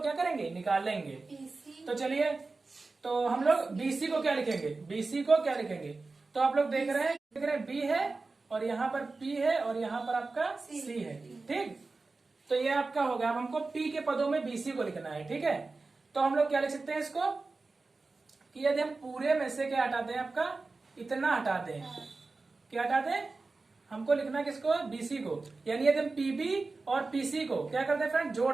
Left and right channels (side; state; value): left; quieter; 3.7 dB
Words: क्या करेंगे, निकाल लेंगे। तो चलिए, तो हम लोग बीसी को क्या लिखेंगे, बीसी को क्या लिखेंगे, तो आप लोग देख रहे हैं बी है और यहाँ पर पी है और यहाँ पर आपका सी है। ठीक, तो ये आपका होगा। अब हमको पी के पदों में बीसी को लिखना है। ठीक है, तो हम लोग क्या लिख सकते हैं इसको कि यदि हम पूरे में से क्या हटा दें, आपका इतना हटा दें, क्या हटा दें, हमको लिखना किसको, बीसी को। यानी यदि हम पीबी और पीसी को क्या कर दें फ्रेंड,